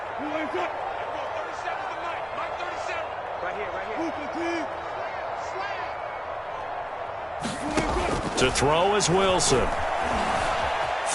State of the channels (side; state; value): both; identical; correlation 1.00